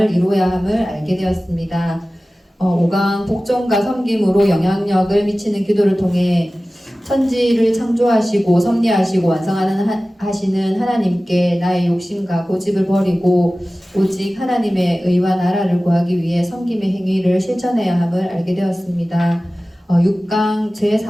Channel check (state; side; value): normal; both; correlation 0.97